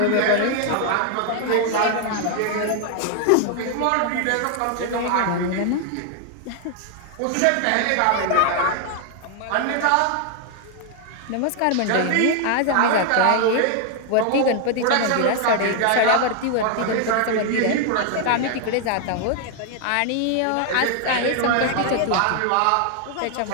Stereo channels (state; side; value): different; both; correlation 0.00